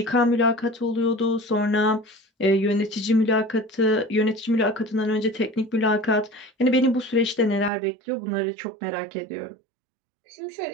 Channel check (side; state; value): left; drops out; at 7.7 s